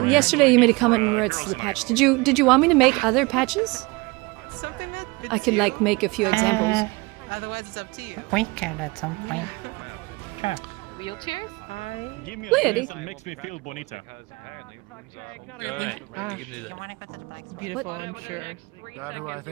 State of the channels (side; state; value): left; quieter; 24.9 dB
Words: yesterday you made a comment in regards to the patch. Did you want me to make other patches? I could like make a few examples. Otherwise, it's up to you. We can at some point. Sure. Wheelchairs? Give me Look a at dress it. that makes me feel bonita. Alright, you can do that. Beautiful, I'm sure. That who I